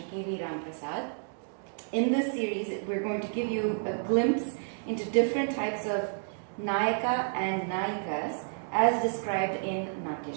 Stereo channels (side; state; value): left; silent; digital silence